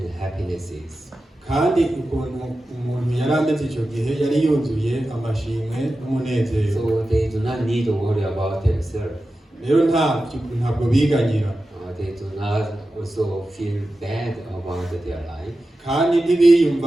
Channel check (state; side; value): normal; both; correlation 0.93